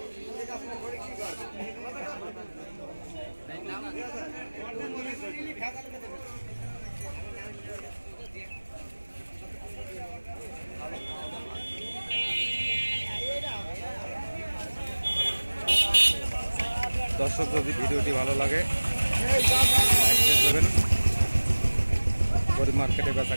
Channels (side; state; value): both; inverted; correlation -1.00